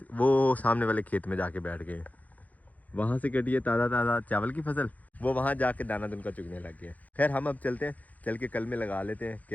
वो सामने वाले खेत में जाके बैठ गए। वहाँ से कटी है ताज़ा चावल की फसल, वो वहाँ जाके दाना दुनका चुगने लग गया। खैर हम अब चलते हैं, चल के कल में लगा लेते हैं।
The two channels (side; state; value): right; late; 0.077 ms